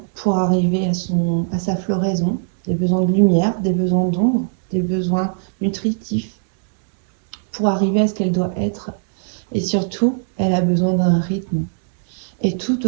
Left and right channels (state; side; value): silent; left; digital silence